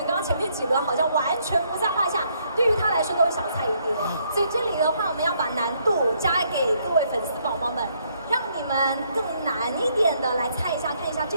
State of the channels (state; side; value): inverted; both; correlation -0.70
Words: 刚刚前面几轮好像完全不在话下，对于他来说都是小菜一碟，所以这里的话我们要把难度加给各位粉丝宝宝们，让你们更难一点的来猜一下，看一下这